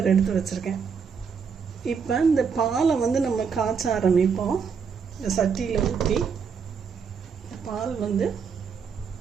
எடுத்து வச்சுருக்கேன். இப்போ இந்த பாலை வந்து நம்ம காய்ச்ச ஆரம்பிப்போம். இந்த சட்டியில் ஊற்றி பால் வந்து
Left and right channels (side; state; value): left; quieter; 6.2 dB